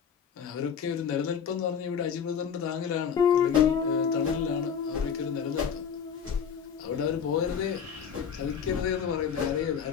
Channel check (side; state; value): right; quieter; 7.3 dB